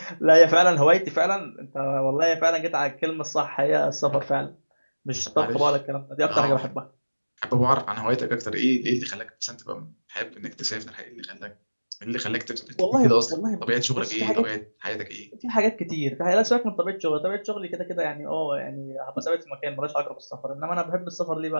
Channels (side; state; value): both; inverted; correlation -1.00